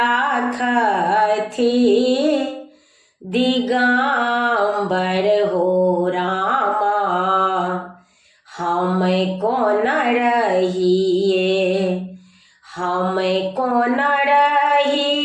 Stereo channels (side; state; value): both; identical; correlation 1.00